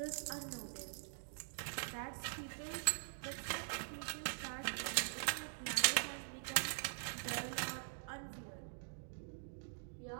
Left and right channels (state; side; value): silent; left; digital silence